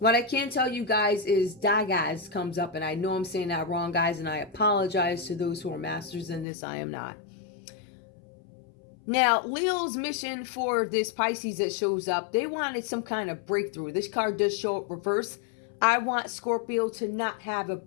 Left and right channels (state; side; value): drops out; right; at 6.5 s